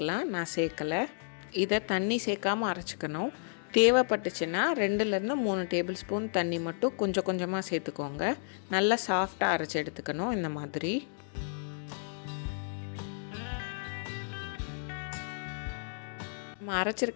நான் சேர்க்கலை. இதை தண்ணி சேர்க்காமல் அரைச்சிக்கணும். தேவைப்பட்டுச்சுன்னா 2-3 டேபிள் ஸ்பூன் தண்ணி மட்டும் கொஞ்சம் கொஞ்சமாக சேர்த்துக்கோங்க. நல்லா சாஃப்டாக அரைச்சி எடுத்துக்கணும். இந்த மாதிரி நம்ம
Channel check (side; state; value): right; silent; digital silence